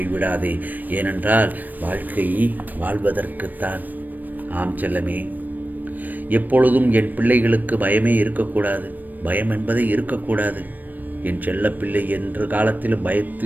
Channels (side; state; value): left; late; 0.087 ms